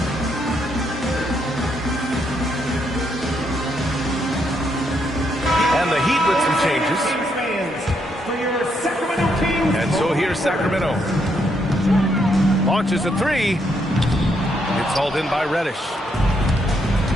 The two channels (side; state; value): both; normal; correlation 0.76